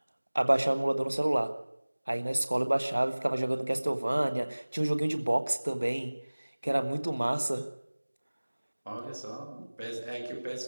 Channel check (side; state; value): both; inverted; correlation -1.00